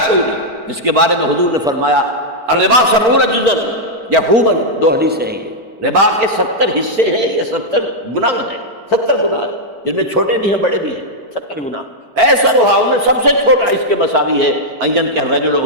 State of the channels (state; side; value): late; left; 4.4 ms